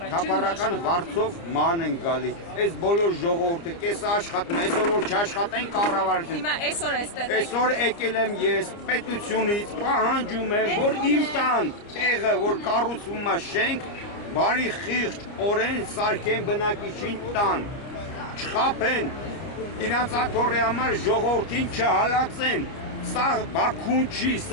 թափառական վարձով ման են գալի։ Այս բոլոր ժողովուրդը կեսը աշխատում է, այսօր որ չաշխատեն կառավարություն։ Հիմա այսօր էստեղ Այսօր եկել եմ ես պետությունից, պահանջում եմ, որ իմ տան տեղը, որ կառուցվում է շենք, բարի խիղճ օրեն սարքեն բնակիչին տան, չխափեն, իրանց աթոռի համար ժողովրդին չհալածեն, սա Բաքուն չի,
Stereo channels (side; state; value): right; late; 29 ms